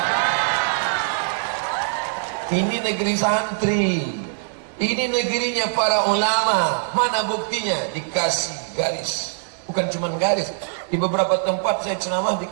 Ini negeri santri, ini negerinya para ulama. Mana buktinya? Dikasih garis, bukan cuma garis. Di beberapa tempat saya ceramah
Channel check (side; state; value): left; silent; 64 dB below the other